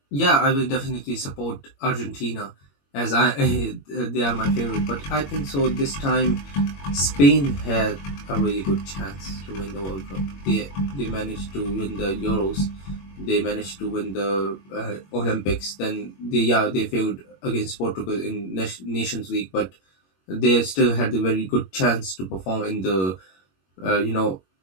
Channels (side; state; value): right; late; 21 ms